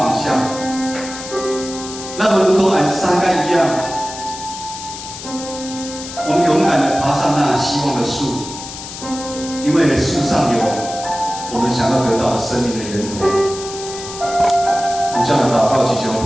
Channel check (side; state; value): left; noise; hiss, 11 dB below the sound